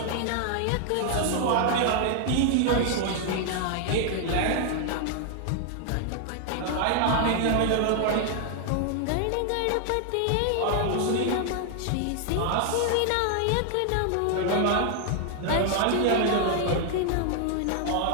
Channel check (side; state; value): both; different; correlation 0.00